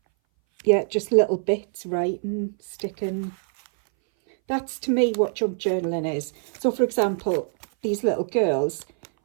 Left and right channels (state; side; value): silent; left; 60 dB below the other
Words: yeah, just little bits, writing, sticking. That's to me what junk journaling is. So for example, these little girls,